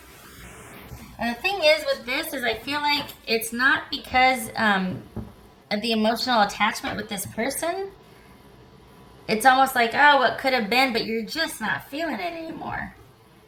And the thing is with this is I feel like it's not because of the emotional attachment with this person. It's almost like, oh, what could have been, but you're just not feeling it anymore.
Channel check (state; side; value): identical; both; correlation 1.00